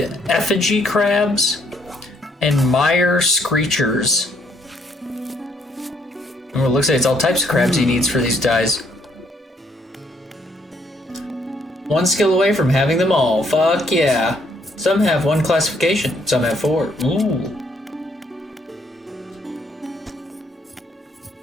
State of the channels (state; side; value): normal; both; correlation 0.69